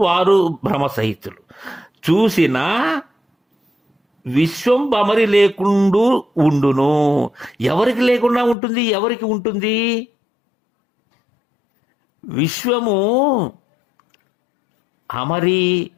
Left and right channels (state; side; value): drops out; right; at 8.6 s